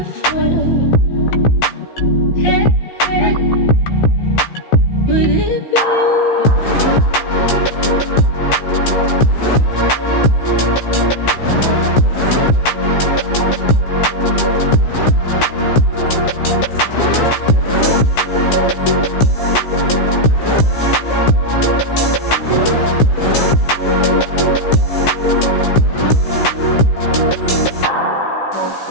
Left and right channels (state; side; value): late; right; 15 ms